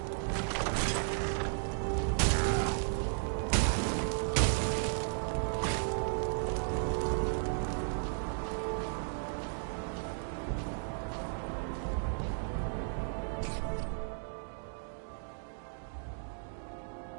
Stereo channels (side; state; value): left; silent; digital silence